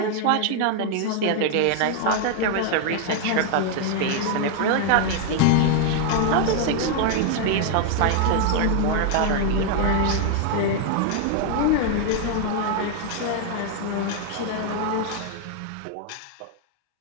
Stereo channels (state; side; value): different; both; correlation 0.00